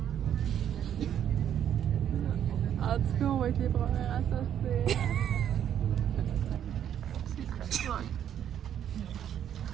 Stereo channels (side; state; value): left; quieter; 9.7 dB